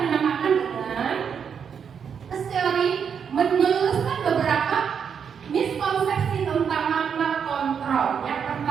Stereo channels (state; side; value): quieter; left; 7.1 dB